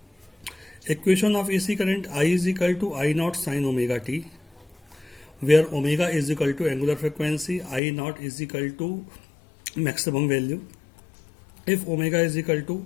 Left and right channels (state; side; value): drops out; right; at 7.8 s